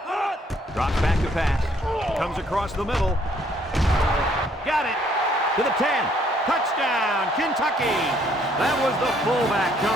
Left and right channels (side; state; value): both; normal; correlation 0.66